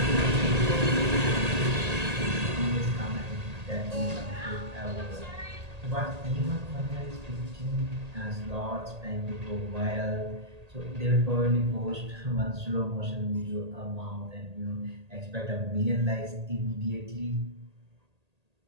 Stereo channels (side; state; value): left; late; 1.8 ms